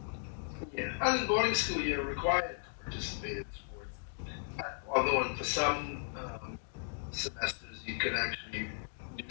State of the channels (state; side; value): silent; right; digital silence